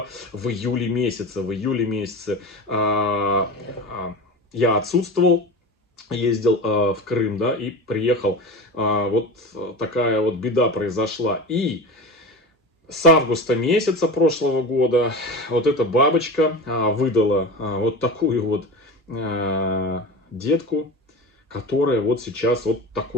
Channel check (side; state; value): both; normal; correlation 0.29